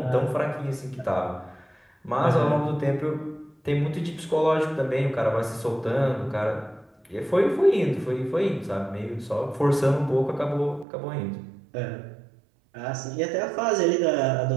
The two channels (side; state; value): left; drops out; at 10.9 s